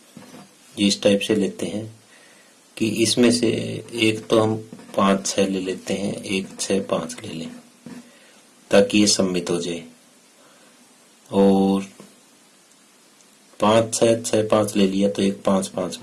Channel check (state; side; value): identical; both; correlation 1.00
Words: इस टाइप से लेते हैं कि इसमें से एक तो हम 5 6 ले लेते हैं, एक 6 5 ले लें ताकि ये सम्मित हो जाए, और 5 6 6 5 ले लिया तो एक 5 5